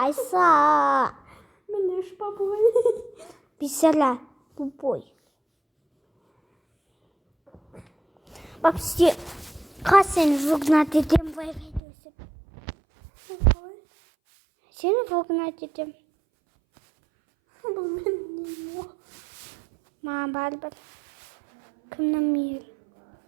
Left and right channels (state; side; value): drops out; left; at 11.8 s